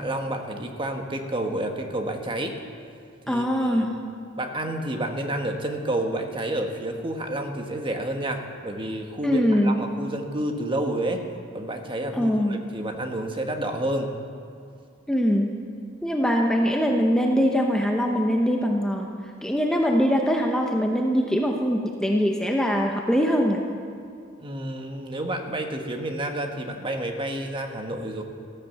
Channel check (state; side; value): normal; both; correlation 0.75